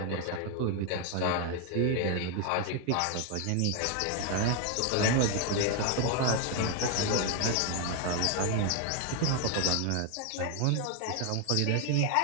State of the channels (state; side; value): different; both; correlation 0.01